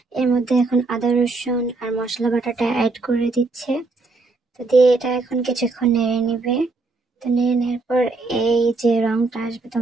এর মধ্যে এখন আদা রসুন আর মশলা বাটাটা অ্যাড করে দিচ্ছে। তো দিয়ে এটা এখন কিছুক্ষণ নেড়ে নিবে। তো নেড়ে নেওয়ার পর এই যে রংটা আসবে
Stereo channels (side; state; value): left; quieter; 3.6 dB